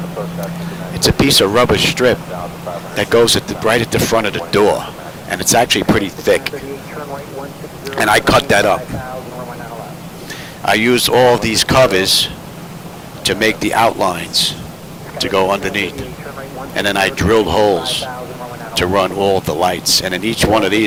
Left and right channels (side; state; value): both; identical; correlation 1.00